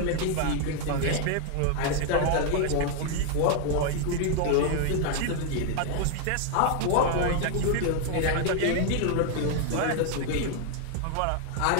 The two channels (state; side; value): different; both; correlation 0.00